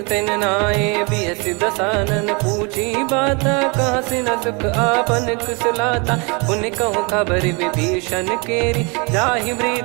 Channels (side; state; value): left; quieter; 31.0 dB